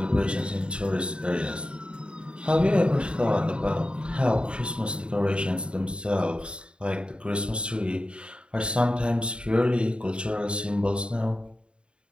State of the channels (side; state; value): left; late; 0.054 ms